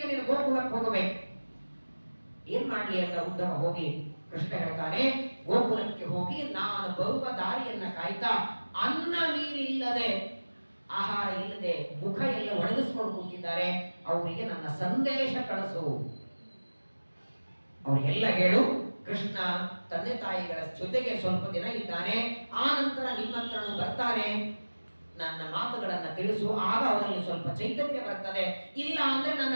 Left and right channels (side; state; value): both; inverted; correlation -1.00